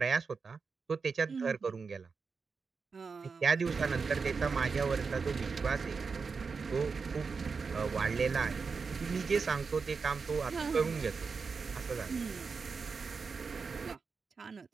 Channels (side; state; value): left; quieter; 5.0 dB